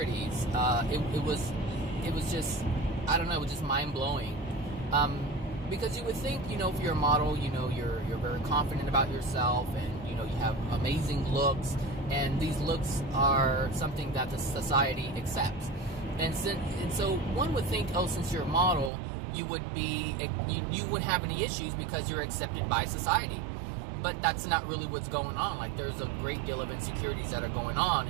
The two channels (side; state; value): left; drops out; at 18.9 s